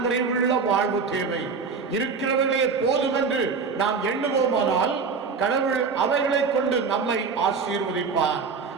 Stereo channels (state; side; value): quieter; left; 5.2 dB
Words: நிறைவுள்ள வாழ்வு தேவை. இருக்கிறவர்களே போதும் என்று நாம் எண்ணுவோமானால் கடவுள் அவைகளை கொண்டு நம்மை ஆசீர்வதிப்பார்.